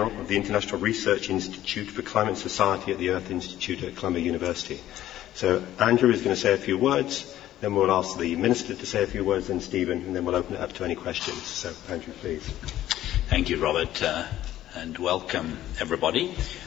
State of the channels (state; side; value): quieter; right; 13.3 dB